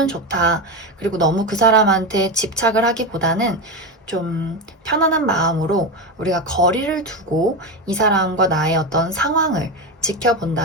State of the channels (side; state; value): both; normal; correlation 0.16